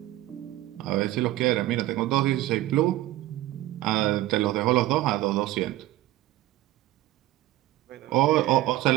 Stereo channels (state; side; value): quieter; left; 15.8 dB